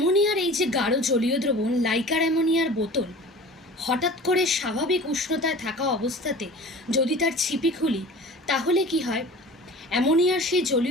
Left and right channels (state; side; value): normal; both; correlation 0.41